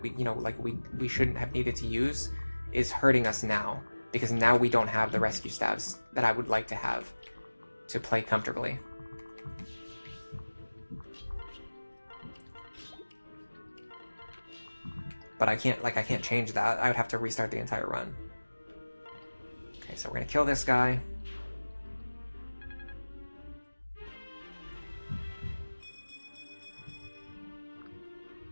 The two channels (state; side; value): inverted; both; correlation -1.00